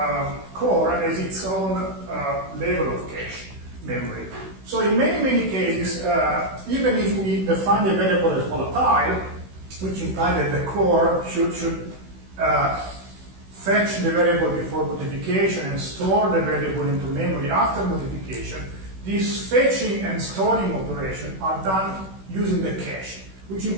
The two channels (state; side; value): late; left; 16 ms